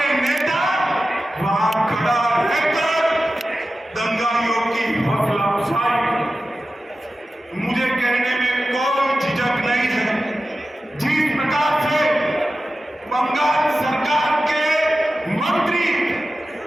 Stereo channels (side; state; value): both; normal; correlation 0.94